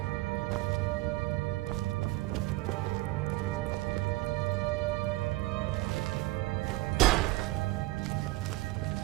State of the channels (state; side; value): quieter; left; 20.0 dB